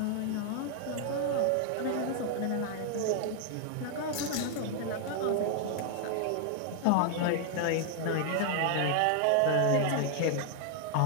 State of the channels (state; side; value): different; both; correlation 0.00